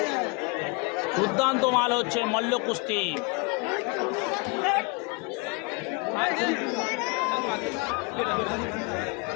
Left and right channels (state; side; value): quieter; right; 29.1 dB